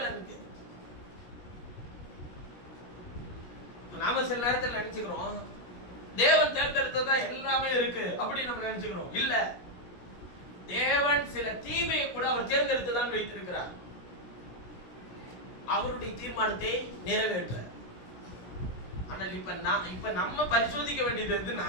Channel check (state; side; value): late; right; 17 ms